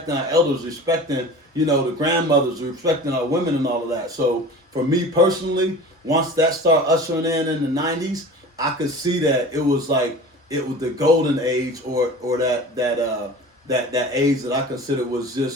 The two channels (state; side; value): normal; both; correlation 0.38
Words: our elders, respecting, you know, the grandmothers, respecting our women and all of that. So for me personally, once that started ushering in the '90s, I could see that it was the golden age, or that age that I consider was